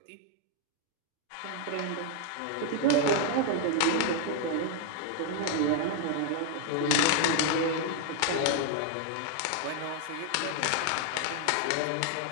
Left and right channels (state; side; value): different; both; correlation 0.00